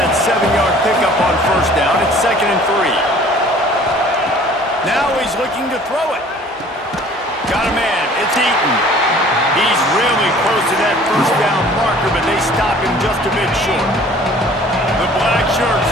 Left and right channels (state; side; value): normal; both; correlation 0.51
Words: that 7-yard pickup on first down. It's 2nd and 3. Now he's looking to throw it. Got a man. It's Eaton. He's really close to that first down marker, but they stop him just a bit short. The black shirts